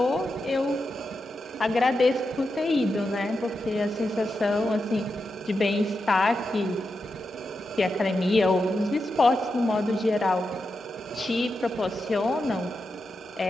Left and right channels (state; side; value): normal; both; correlation 0.88